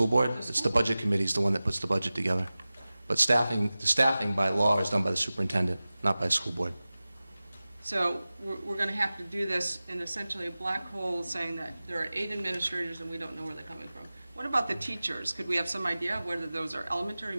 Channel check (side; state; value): both; inverted; correlation -0.97